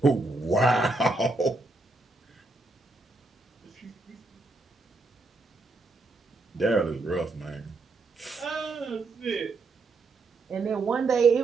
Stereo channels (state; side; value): quieter; left; 3.2 dB